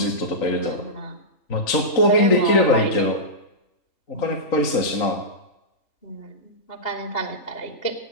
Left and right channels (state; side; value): late; right; 3.8 ms